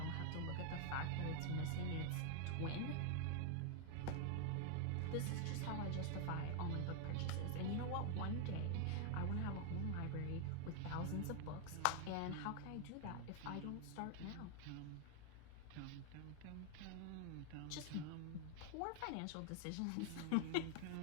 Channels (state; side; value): different; both; correlation 0.00